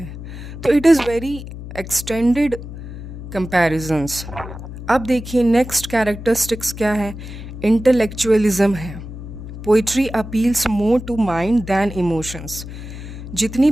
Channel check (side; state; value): left; noise; hum, 11 dB below the sound